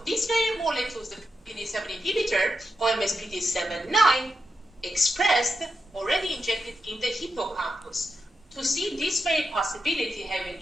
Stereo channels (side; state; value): both; normal; correlation 0.87